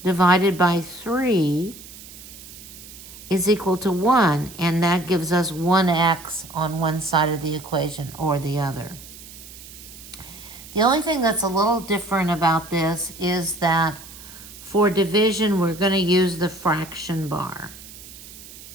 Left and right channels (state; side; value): noise; right; hiss, 17 dB below the sound